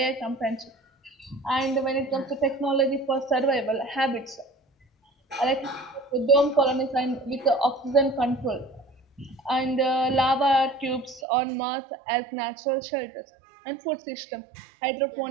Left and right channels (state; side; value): drops out; left; at 11.2 s